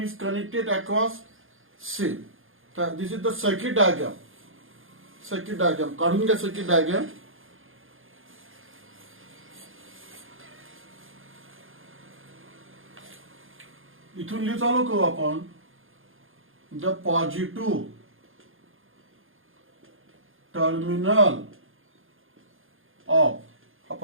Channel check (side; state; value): left; late; 0.59 ms